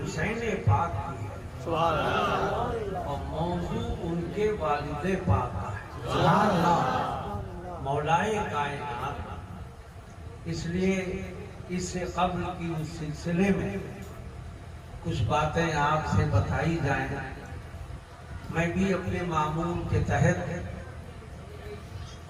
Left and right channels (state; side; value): identical; both; correlation 1.00